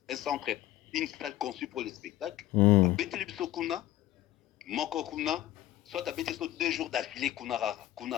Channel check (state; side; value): quieter; right; 14.4 dB